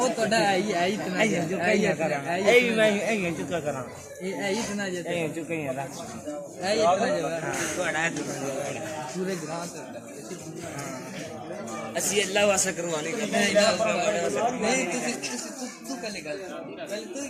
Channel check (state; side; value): identical; both; correlation 1.00